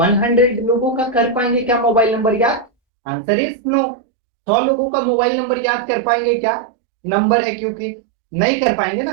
लोगों का कर पाएंगे क्या मोबाइल नंबर याद? Answer is no. 100 लोगों का मोबाइल नंबर याद कर पाएंगे क्या? नंबर है क्योंकि, नहीं कर पाएंगे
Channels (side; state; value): left; drops out; at 2.7 s